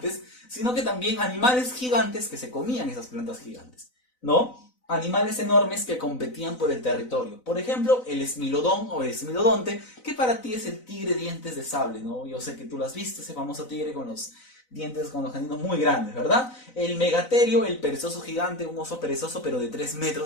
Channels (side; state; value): right; late; 4.0 ms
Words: sino que también animales gigantes que se comían esas plantas gigantes, ¿no? Animales enormes que competían por el territorio. Por ejemplo, el esmilodón o el esmilodonte, que para ti es el tigre dientes de sable, ¿no? Yo sé que tú lo has visto, ese famoso tigre con los dientes con los caninos muy grandes, ¿verdad? El megaterio, el perezoso gigante, un oso perezoso pero de 3